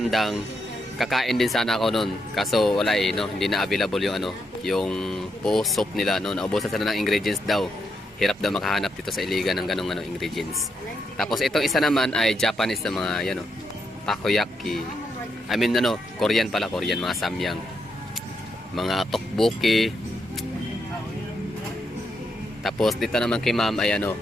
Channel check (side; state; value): both; normal; correlation 0.80